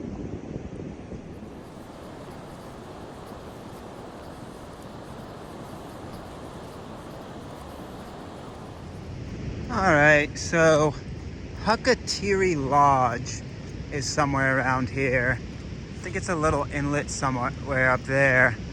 All right, so Hakatiri Lodge is somewhere around here. I think it's a little inlet somewhere up there.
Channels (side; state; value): both; identical; correlation 1.00